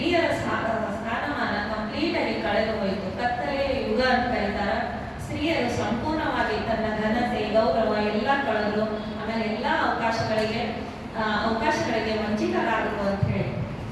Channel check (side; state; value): both; identical; correlation 1.00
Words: ಸ್ಥಾನಮಾನ ಕಂಪ್ಲೀಟ್ ಆಗಿ ಕಳೆದು ಹೋಯಿತು. ಕತ್ತಲೆಯ ಯುಗ ಅಂತ ಕರೀತಾರ. ಸ್ತ್ರೀಯರು ಸಂಪೂರ್ಣವಾಗಿ ತನ್ನ ಘನತೆ ಗೌರವ ಎಲ್ಲ ಕಳೆದ್ರು. ಆಮೇಲೆ ಎಲ್ಲ ಅವಕಾಶಗಳಿಗೆ ವಂಚಿತರಾದರು ಅಂತ ಹೇಳಿ.